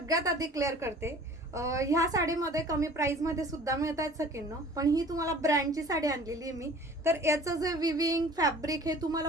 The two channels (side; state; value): both; normal; correlation 0.47